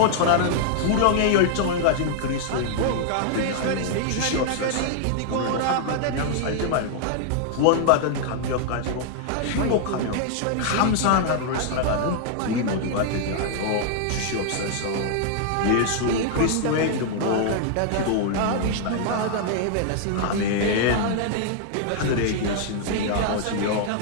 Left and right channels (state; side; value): different; both; correlation 0.00